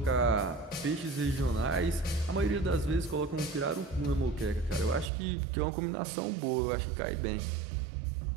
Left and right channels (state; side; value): drops out; left; at 5.1 s